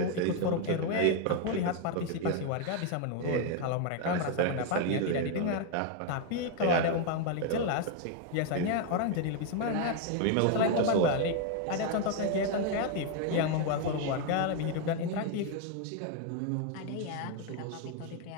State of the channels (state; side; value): different; both; correlation 0.01